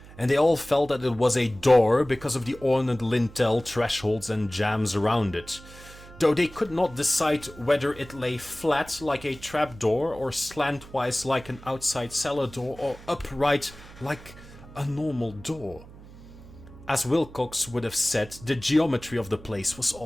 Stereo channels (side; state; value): right; noise; hum, 19 dB below the sound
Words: and they all felt that it was a door because of the ornate lintel, thresholds and jambs around it, though they could not decide whether it lay flat like a trapdoor or slantwise like an outside cellar door or upright like a normal door. As Wilcox would have said, the geometry of the place was